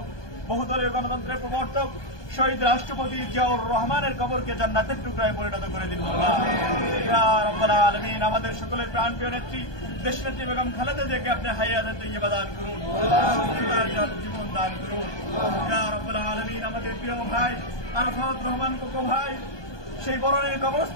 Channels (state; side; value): late; right; 1.2 ms